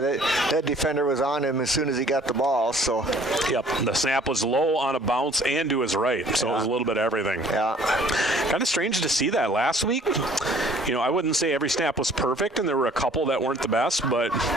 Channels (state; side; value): normal; both; correlation 0.55